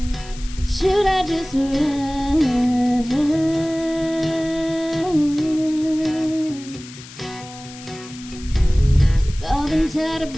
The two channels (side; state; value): left; noise; hiss, 17 dB below the sound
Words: Should I just run? We've all been taught